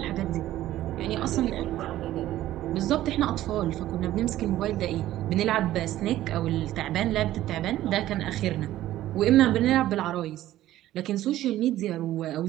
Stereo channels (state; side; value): quieter; left; 14.1 dB